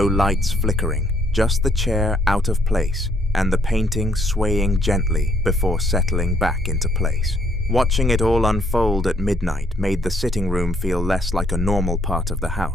lights flickering, just the chair out of place and the painting swaying gently before settling back into place. Watching it all unfold at midnight made the sitting room feel less like a normal part of the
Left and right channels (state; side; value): normal; both; correlation 0.68